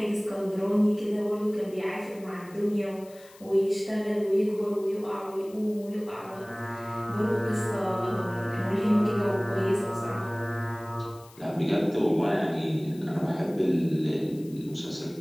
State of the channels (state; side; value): noise; left; hiss, 24 dB below the sound